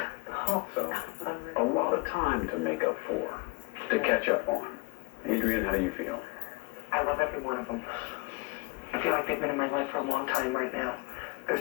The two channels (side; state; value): right; quieter; 26.2 dB